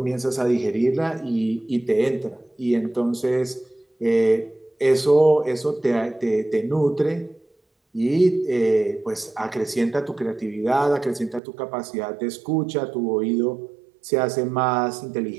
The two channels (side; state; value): left; drops out; at 11.4 s